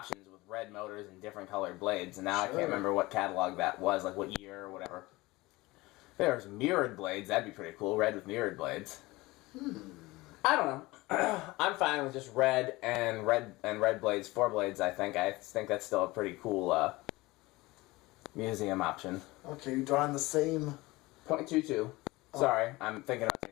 with red motors and different colored blades, and now I can't remember what catalog that was, like what year or whatever. If there's mirrored blades, that'd be pretty cool. Red with mirrored blades. I don't know. I'm fine with just red blades, 4 blades. I think that's still a pretty cool museum option. Okay, you're drawing the same .22. Sorry, I'm thinking about two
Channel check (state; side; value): quieter; right; 20.9 dB